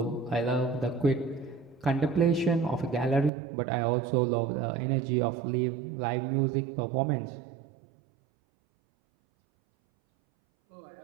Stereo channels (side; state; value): left; drops out; at 3.3 s